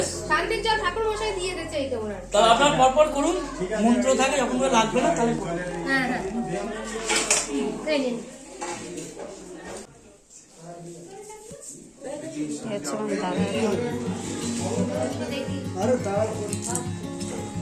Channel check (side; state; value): both; identical; correlation 1.00